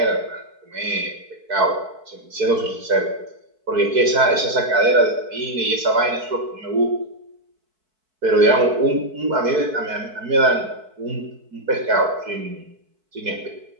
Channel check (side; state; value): left; late; 4.6 ms